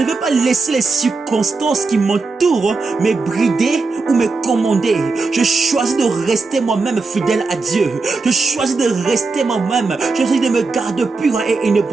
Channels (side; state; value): left; quieter; 3.9 dB